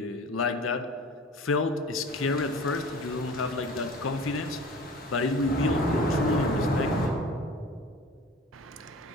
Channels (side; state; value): both; normal; correlation 0.41